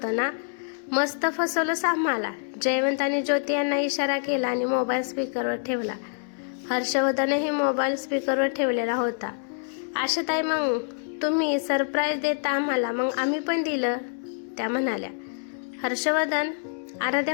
ना? मस्त फसवलंस आम्हाला. जयवंत आणि ज्योती यांना इशारा केला आणि मोबाईल स्पीकरवर ठेवला. हर्षवर्धनही मोबाईल स्पीकरवर ठेवलेला होता. आशाताई, मग तुम्ही सरप्राईज देता आम्हाला, मग आम्ही पण दिलं, त्या म्हणाल्या. हर्षवर्धन,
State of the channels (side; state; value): right; silent; digital silence